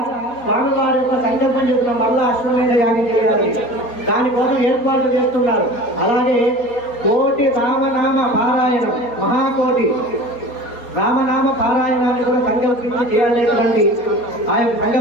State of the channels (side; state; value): right; late; 4.3 ms